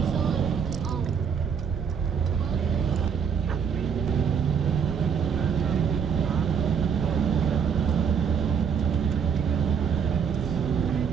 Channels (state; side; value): quieter; left; 6.9 dB